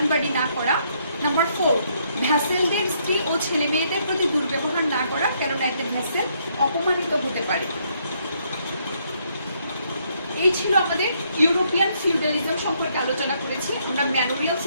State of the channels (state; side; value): inverted; both; correlation -0.72